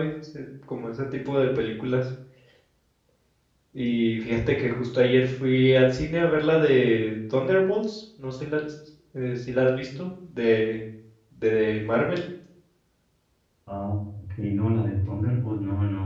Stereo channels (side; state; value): both; identical; correlation 1.00